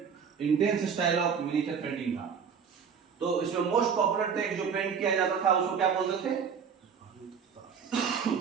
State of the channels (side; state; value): left; quieter; 6.7 dB